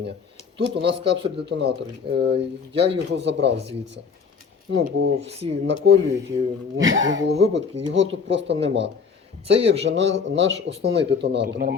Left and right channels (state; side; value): quieter; right; 5.7 dB